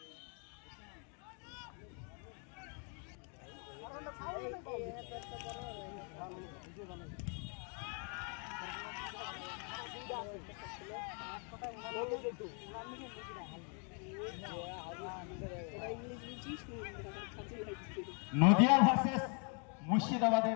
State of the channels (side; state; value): right; quieter; 38.9 dB